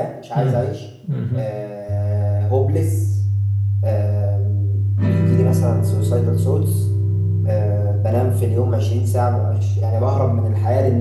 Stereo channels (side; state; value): both; identical; correlation 1.00